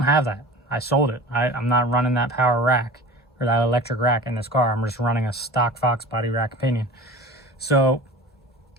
have that. I sold it. I'm not running that power rack or that electric rack in this car. I'm just running a stock foxbody rack pinion. So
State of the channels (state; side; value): normal; both; correlation 0.38